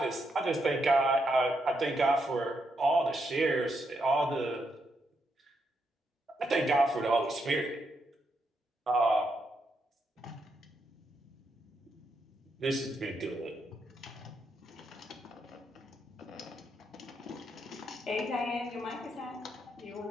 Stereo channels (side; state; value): both; normal; correlation 0.80